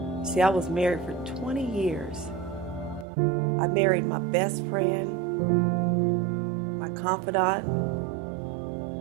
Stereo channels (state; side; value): drops out; left; at 3.1 s